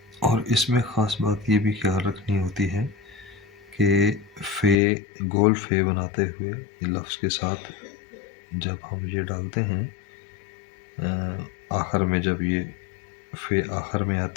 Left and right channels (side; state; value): right; drops out; at 4.8 s